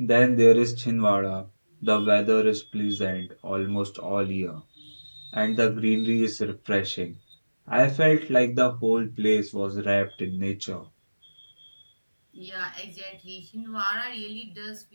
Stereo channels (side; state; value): both; inverted; correlation -1.00